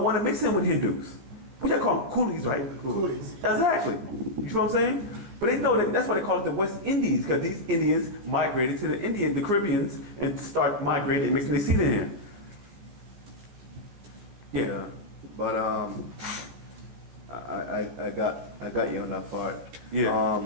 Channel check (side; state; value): left; late; 15 ms